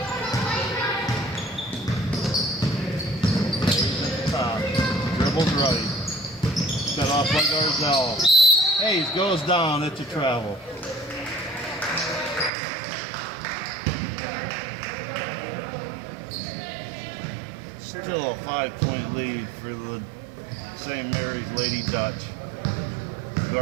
Top. Dribbles right. Set off by Garzell. Hayes goes down. It's a travel. Still a 5-point lead for the St. Mary's Lady Dutch.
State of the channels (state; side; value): drops out; left; at 12.5 s